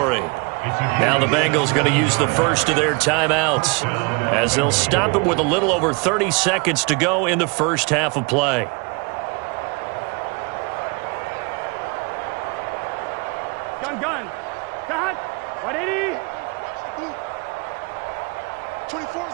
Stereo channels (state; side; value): quieter; left; 30.2 dB